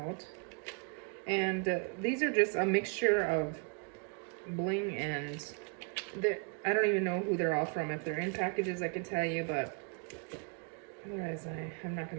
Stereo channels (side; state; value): left; quieter; 37.4 dB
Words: And these are just a mixture of bling and... I don't even know who they're all from. If they're in packages, I could tell you, but... Otherwise, I'm not